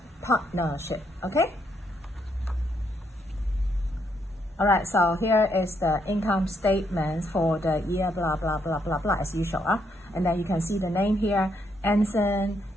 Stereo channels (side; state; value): both; normal; correlation 0.75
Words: partnership, okay? Alright, so here is the income statement for the year blah blah blah blah blah as usual. And then you can see the name here, Anson